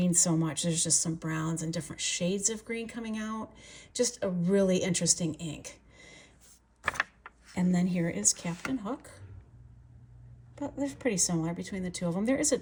so much. There's just some browns and different shades of green coming out. Just a really interesting ink. And then here is Captain Hook. But they're pretty similar between the two of them. There is a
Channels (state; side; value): identical; both; correlation 1.00